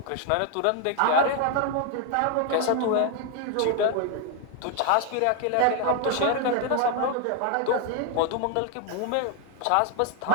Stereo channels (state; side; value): different; both; correlation 0.00